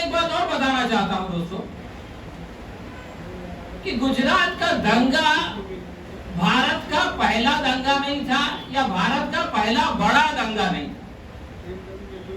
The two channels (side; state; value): both; identical; correlation 1.00